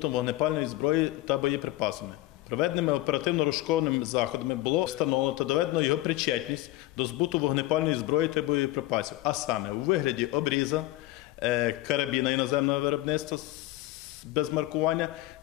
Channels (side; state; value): right; quieter; 17.2 dB